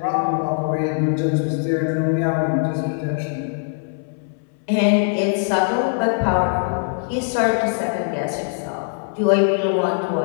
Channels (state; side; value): silent; right; 65 dB below the other